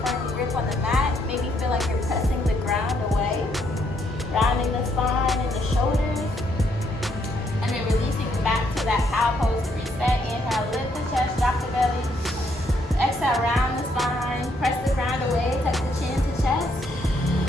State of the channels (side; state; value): both; normal; correlation 0.72